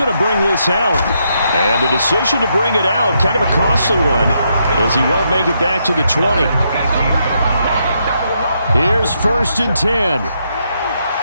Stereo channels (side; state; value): both; inverted; correlation -0.78